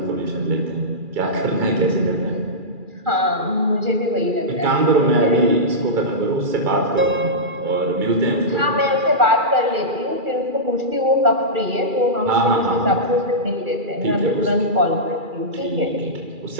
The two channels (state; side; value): late; left; 2.4 ms